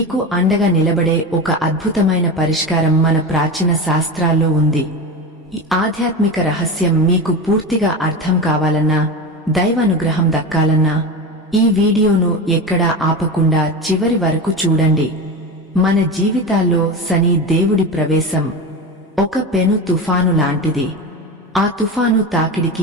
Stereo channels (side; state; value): both; normal; correlation 0.24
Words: అండగా నిలబడే ఒక అద్భుతమైన పరిష్కారం మన ప్రాచీన శాస్త్రాల్లో ఉంది. ఈ ఆధ్యాత్మిక రహస్యం మీకు పూర్తిగా అర్థం కావాలన్నా, దైవానుగ్రహం దక్కాలన్నా ఈ వీడియోను ఎక్కడా ఆపకుండా చివరి వరకు చూడండి. మన జీవితాల్లో శని దేవుడి ప్రవేశం ఒక పెను తుఫాను లాంటిది. ఆ తుఫాను